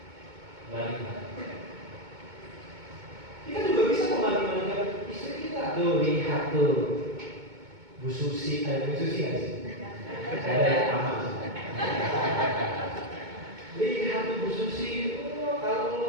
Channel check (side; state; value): left; late; 2.2 ms